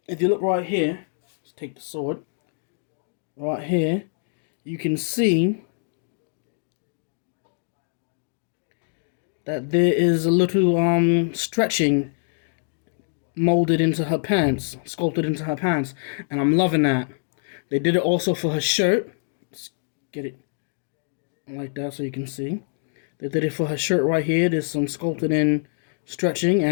If you look right here, let's take the sword. Right here, you can see that there is a little stretching molded into her pants, sculpted into her pants, and I'm loving that. They did it also for her shirt. Let's get it like that so you can see. They did it for her shirt right here. There's some sculpted in stretching,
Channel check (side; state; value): right; silent; digital silence